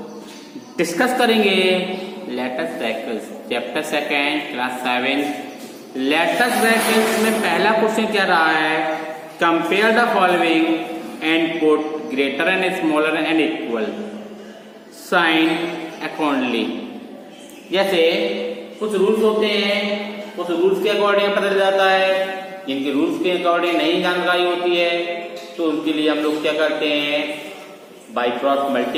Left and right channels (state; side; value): identical; both; correlation 1.00